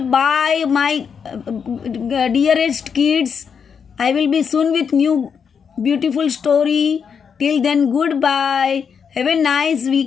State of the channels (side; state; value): right; quieter; 6.7 dB